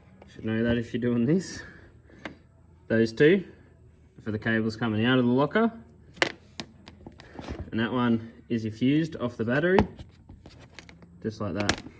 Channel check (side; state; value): both; identical; correlation 1.00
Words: Should know that if you're doing this. Those two for the cables coming out of the locker. And that one is your fused off the battery. Just like that.